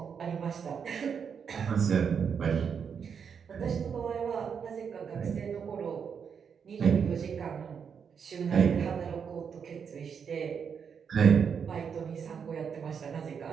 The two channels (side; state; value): left; quieter; 6.8 dB